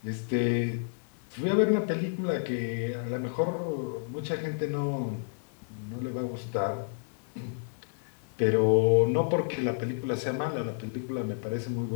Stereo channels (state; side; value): silent; right; 58 dB below the other